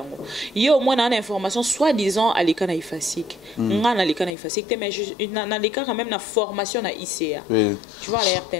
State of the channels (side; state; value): right; drops out; at 4.3 s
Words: yo moi na information soi-disant à l'école na ifasik nga na l'école na ifasik mais na l'école quand même na formation na ICA tu vois la